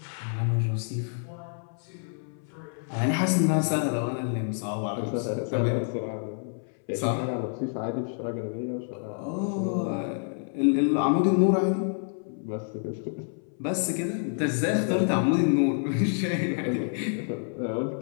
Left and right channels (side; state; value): right; silent; 59 dB below the other